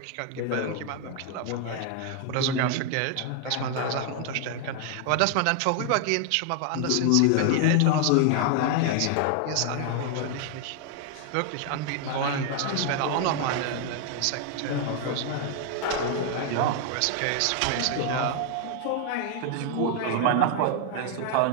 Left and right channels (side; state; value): both; different; correlation 0.00